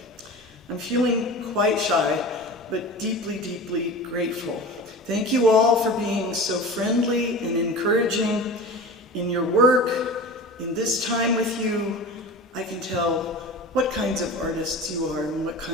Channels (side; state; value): both; normal; correlation 0.34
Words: I'm feeling quite shy, but deeply, deeply grateful. Thank you all for being so friendly and encouraging in your work. In this time with you, I can tell what kinds of artists you are and what